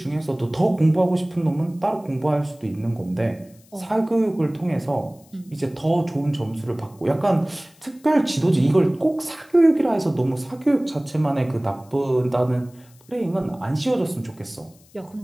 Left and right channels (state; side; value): noise; left; hiss, 29 dB below the sound